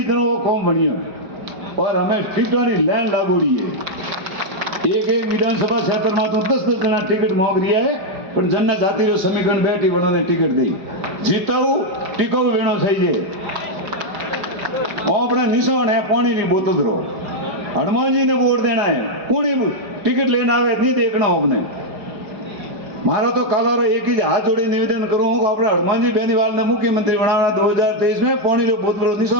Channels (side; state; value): left; late; 5.2 ms